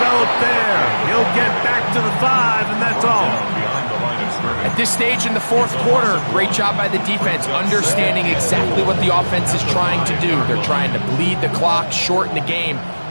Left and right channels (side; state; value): both; inverted; correlation -1.00